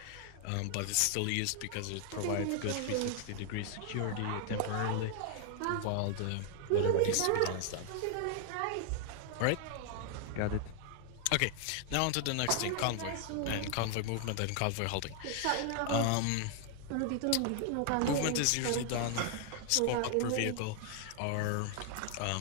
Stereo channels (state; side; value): different; both; correlation 0.00